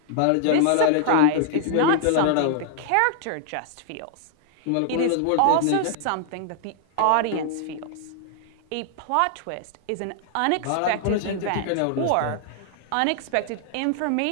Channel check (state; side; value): different; both; correlation -0.01